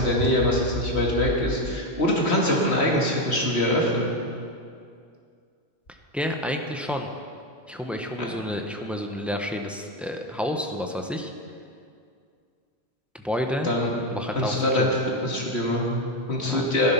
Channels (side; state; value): both; normal; correlation 0.11